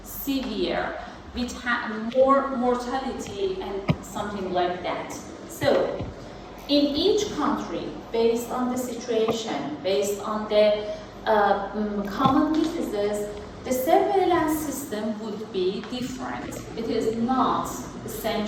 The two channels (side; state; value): both; identical; correlation 1.00